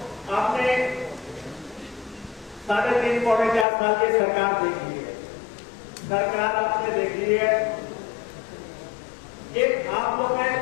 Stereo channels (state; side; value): drops out; right; at 3.7 s